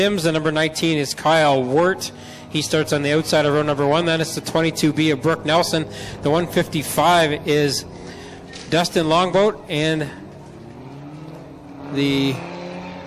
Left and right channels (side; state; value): both; identical; correlation 1.00